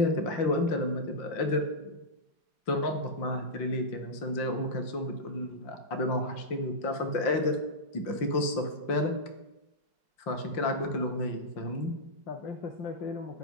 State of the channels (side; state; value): right; late; 5.7 ms